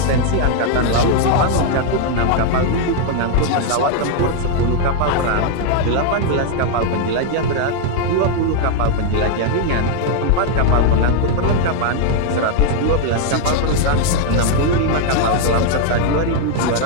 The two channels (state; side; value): different; both; correlation 0.00